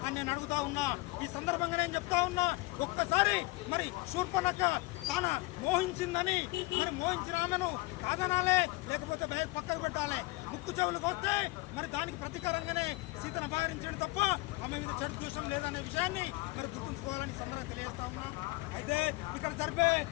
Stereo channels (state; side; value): quieter; right; 22.7 dB